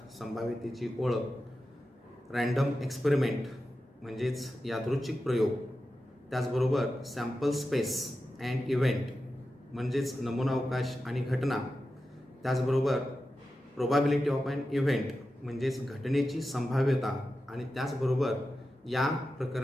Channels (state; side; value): normal; both; correlation 0.92